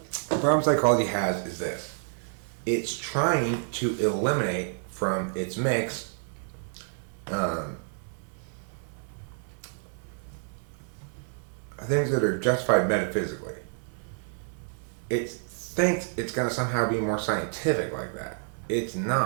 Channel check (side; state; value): left; silent; 59 dB below the other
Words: The problem psychology has is this. It's trying to eliminate from its mix things that are justified metaphysically. It thinks it's going to somehow be more scientific like that. It's